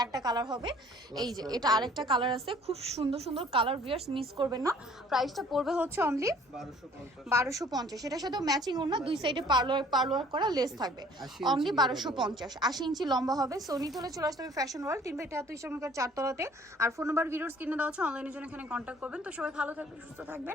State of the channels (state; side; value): normal; both; correlation 0.55